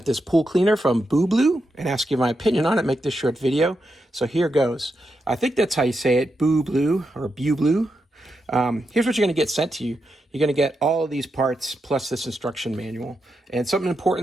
this pool cleaner from BUBLUE and asked you my opinion on it, make this short video. So here goes. I think that's how you say it, BUBLUE or BUBLUE. Here's what you're going to get sent to you. You're going to get all of these parts plus this instruction manual. And something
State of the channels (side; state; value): both; normal; correlation 0.85